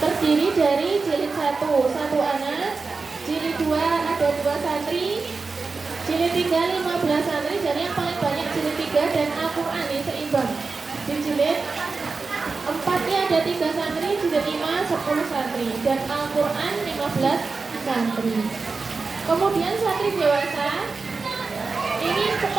terdiri dari jilid 1 anak, jilid 2 ada 2 santri, jilid 3 15 santri, jadi yang paling banyak jilid 3 dan Al-Quran ini seimbang. Di jilid 4-nya ada 3 santri, jilid 5 10 santri, dan Al-Quran 15 santri. Kemudian santri dewasa ini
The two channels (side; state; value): left; quieter; 4.3 dB